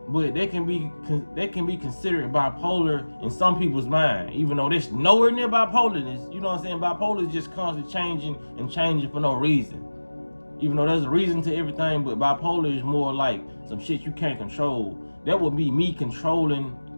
But they can be considered bipolar in some people's mind, even though there's nowhere near bipolarness. You know what I'm saying? Bipolar is just constantly changing for no reason. Even though there's a reason to everything, but bipolar is more like some shit you can't control. That would be me controlling,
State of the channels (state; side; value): inverted; both; correlation -1.00